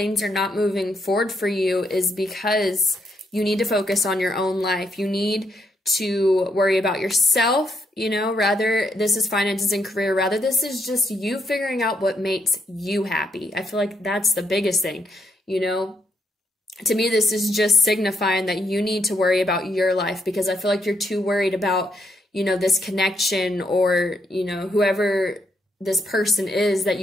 are not moving forward for you is because you need to focus on your own life. You need to worry about yourself, you know, rather this is finances and career, rather this is just you figuring out what makes you happy. I feel like that's the biggest thing, you know. To me, this is just signifying that you need to worry about your life, because I feel like you're too worried about, you know, this connection, or, you know, whoever this person is that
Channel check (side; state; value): both; normal; correlation 0.76